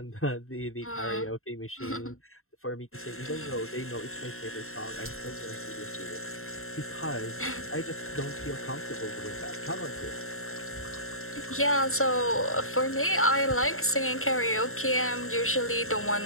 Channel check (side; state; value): right; late; 0.62 ms